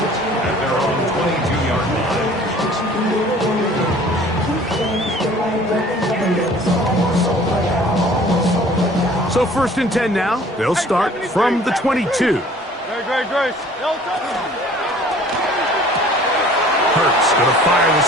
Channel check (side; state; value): both; normal; correlation 0.51